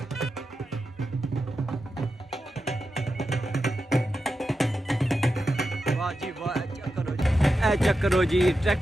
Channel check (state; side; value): normal; both; correlation 0.89